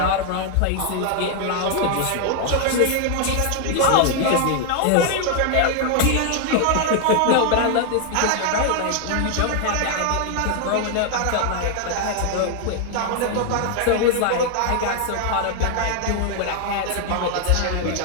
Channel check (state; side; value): different; both; correlation 0.00